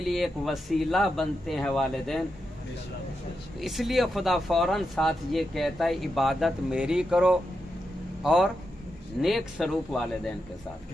لیے ایک وسیلہ بنتے ہیں والدین، اس لیے خدا فوراً ساتھ یہ کہتا ہے عبادت میری کرو اور نیک سلوک والدین کے ساتھ،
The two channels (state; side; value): normal; both; correlation 0.86